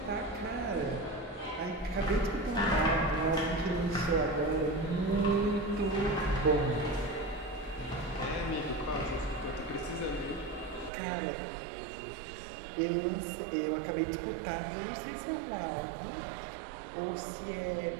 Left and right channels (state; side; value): drops out; left; at 10.9 s